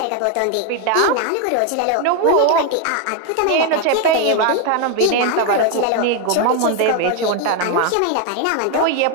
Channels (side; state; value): both; different; correlation 0.01